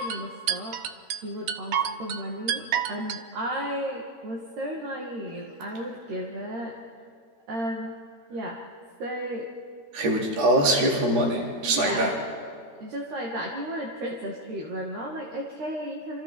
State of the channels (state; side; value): late; left; 13 ms